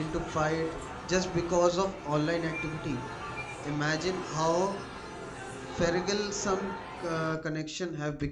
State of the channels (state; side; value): identical; both; correlation 1.00